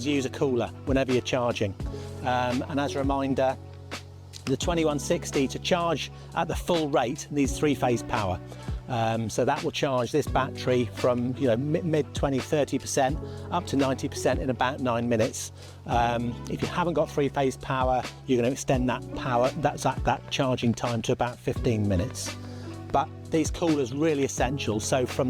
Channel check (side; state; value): both; identical; correlation 1.00